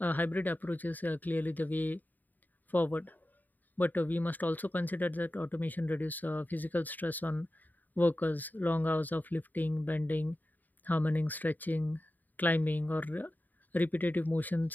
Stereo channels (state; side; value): late; right; 0.086 ms